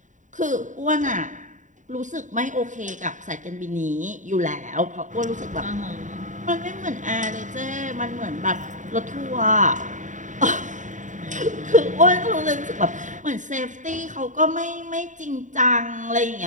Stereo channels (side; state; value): left; late; 0.36 ms